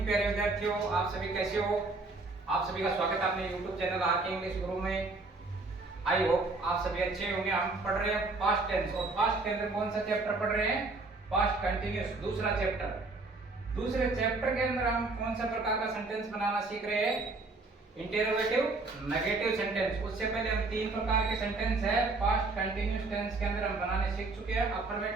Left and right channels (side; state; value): left; quieter; 3.5 dB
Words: प्यारे विद्यार्थियों, आप सभी कैसे हो। आप सभी का स्वागत है अपने YouTube चैनल आरके इंग्लिश गुरु में। आई होप आप सभी अच्छे होंगे। हम पढ़ रहे हैं पास्ट टेंस और पास्ट के अंदर कौन सा चैप्टर पढ़ रहे हैं? पास्ट कंटिन्यूअस, दूसरा चैप्टर। दूसरे चैप्टर के अंदर हम कौन सा प्रकार का सेंटेंस बनाना सीख रहे हैं? Interrogative, negative sentence. उससे पहले हम तीन प्रकार के सेंटेंस है पास्ट कंटिन्यूअस टेंस के अंदर हम बनाने सीख चुके हैं।